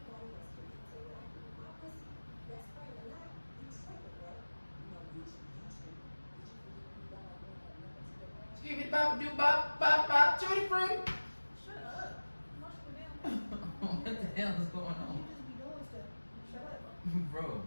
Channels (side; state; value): both; inverted; correlation -1.00